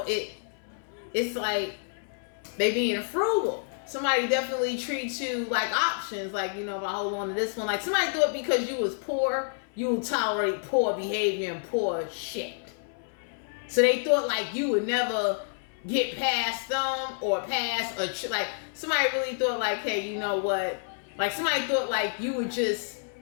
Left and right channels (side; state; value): right; silent; 59 dB below the other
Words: it's like they being frugal. Somebody definitely treats you like options. Like, you know, if I hold on to this one, like somebody thought because you was poor, you would tolerate poor behavior and poor shit. So they thought like you would never get past them or pass like somebody really thought like, hey, you know what? Like somebody thought like you just